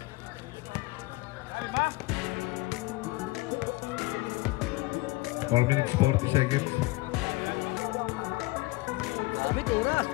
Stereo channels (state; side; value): quieter; right; 21.8 dB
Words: Four minutes, 40 seconds.